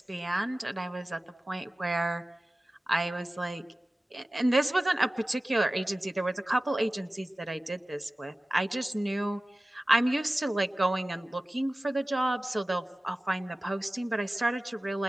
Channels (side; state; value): both; normal; correlation 0.97